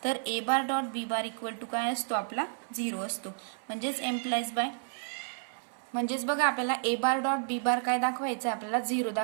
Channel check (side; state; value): left; silent; 57 dB below the other